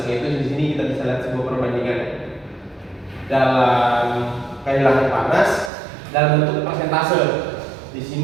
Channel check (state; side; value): drops out; left; at 5.7 s